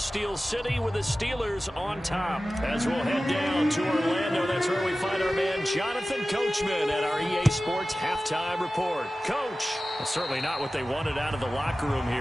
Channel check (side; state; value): both; normal; correlation 0.96